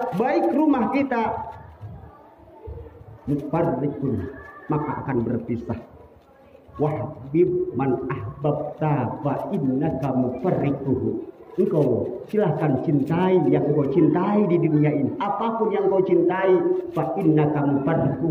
baik rumah kita, mufarriqun, maka akan berpisah. Wahbib man ahbabta fa innaka mufarriquhu. Engkau silahkan cintai yang engkau cintai di dunia ini. Apapun yang engkau cintai, fa innaka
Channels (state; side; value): identical; both; correlation 1.00